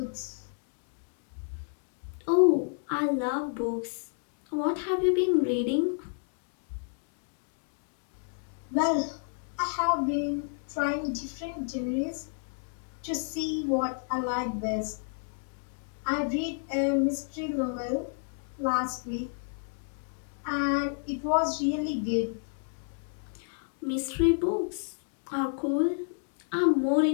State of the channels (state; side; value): silent; right; 57 dB below the other